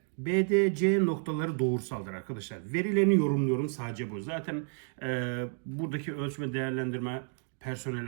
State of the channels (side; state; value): left; silent; 57 dB below the other